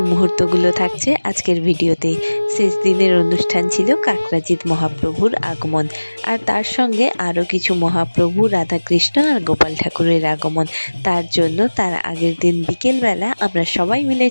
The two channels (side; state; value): both; inverted; correlation -1.00